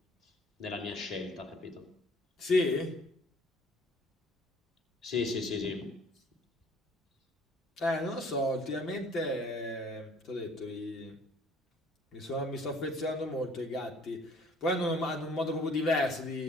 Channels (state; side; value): normal; both; correlation 0.55